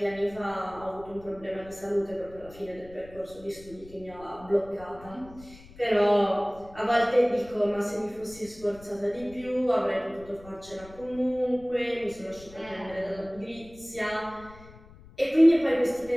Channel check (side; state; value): left; noise; rumble, 21 dB below the sound